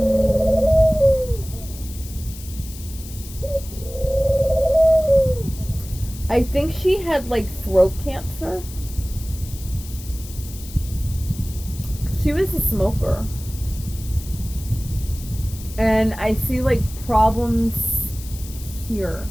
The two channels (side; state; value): left; noise; hiss, 16 dB below the sound